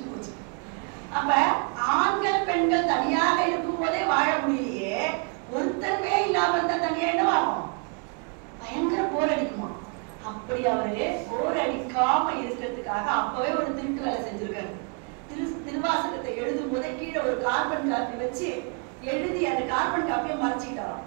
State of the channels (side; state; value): left; quieter; 36.4 dB